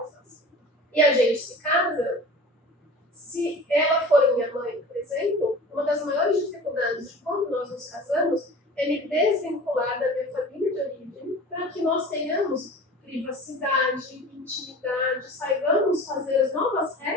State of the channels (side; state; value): both; normal; correlation 0.39